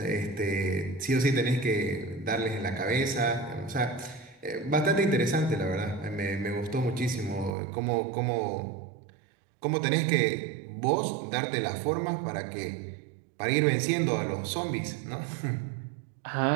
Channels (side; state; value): left; drops out; at 7.6 s